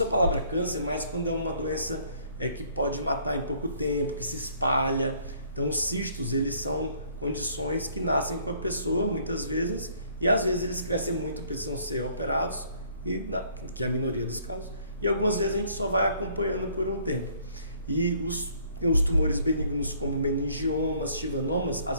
a palavra câncer mais quando é uma doença que pode matar em pouco tempo, que se espalha. Então os cistos, eles são condições que nascem com a pessoa muitas vezes, e às vezes eles crescem muito, precisam ser operados, que é a minoria dos casos, e algumas vezes a gente só vai acompanhando por um tempo. E os tumores benignos como meningiomas, chivanomas,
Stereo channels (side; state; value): both; inverted; correlation -0.61